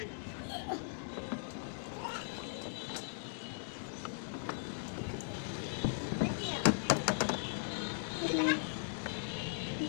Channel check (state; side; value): silent; right; 52 dB below the other